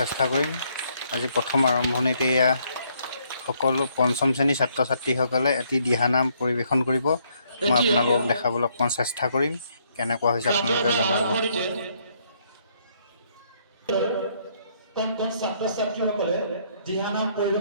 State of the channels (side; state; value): both; inverted; correlation -0.70